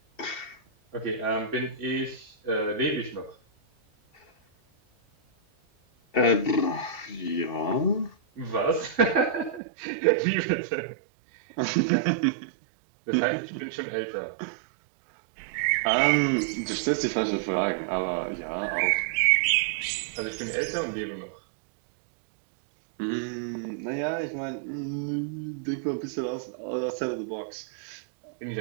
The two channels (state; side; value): drops out; left; at 9.6 s